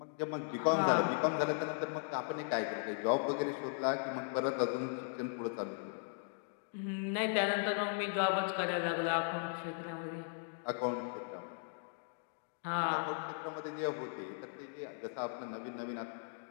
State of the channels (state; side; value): silent; right; digital silence